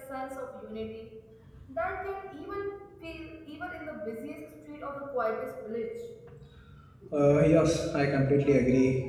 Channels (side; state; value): both; identical; correlation 1.00